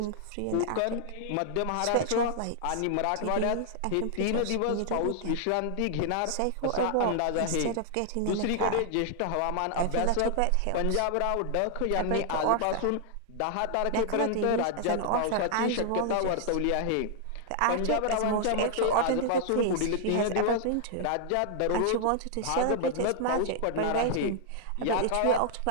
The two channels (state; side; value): different; both; correlation 0.00